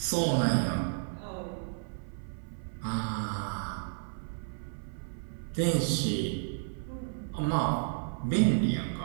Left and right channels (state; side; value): silent; left; 56 dB below the other